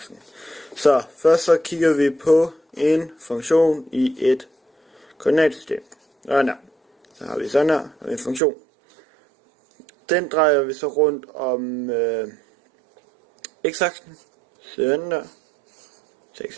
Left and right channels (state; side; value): drops out; left; at 8.4 s